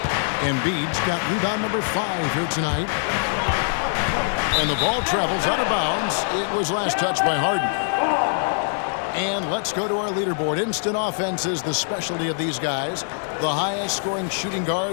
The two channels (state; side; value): silent; right; digital silence